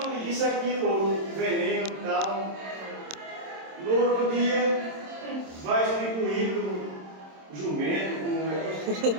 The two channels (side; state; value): left; late; 26 ms